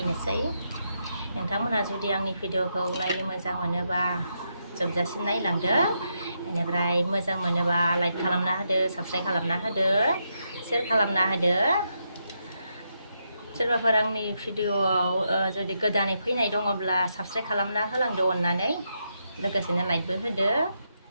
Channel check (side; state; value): both; inverted; correlation -0.82